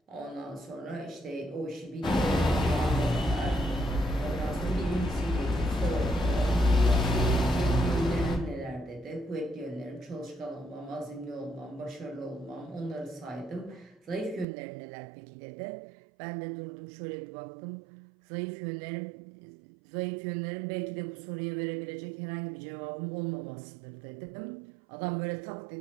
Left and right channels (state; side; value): drops out; left; at 14.5 s